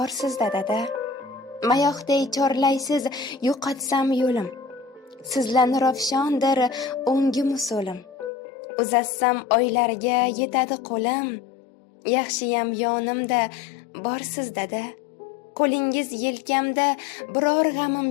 dada. Mayoqday chorlaysiz yo'qotsam yo'lim. Sizlarni ravshondir o'ngim usulim. Uzatsam oylarga yetadi qo'lim. Yaxshiyam yonimda borsiz dada. Qo'lingiz yelkamda biror g'amim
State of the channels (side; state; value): right; drops out; at 8.3 s